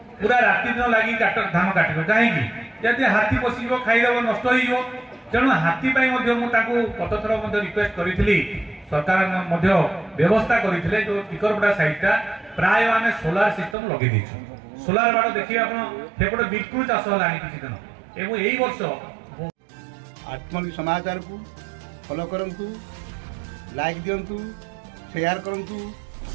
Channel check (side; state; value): left; drops out; at 13.8 s